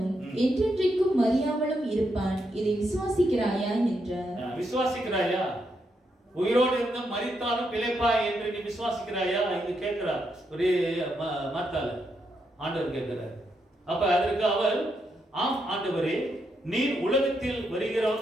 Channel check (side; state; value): both; normal; correlation 0.80